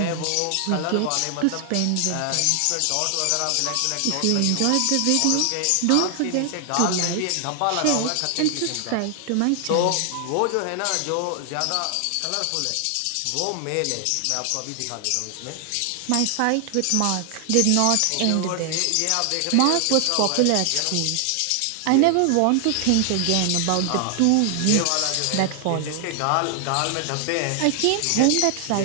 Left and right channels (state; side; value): different; both; correlation 0.00